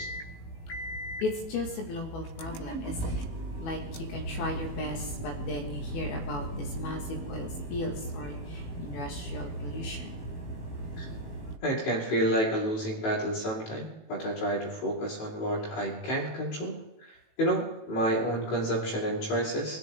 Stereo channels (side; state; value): right; late; 18 ms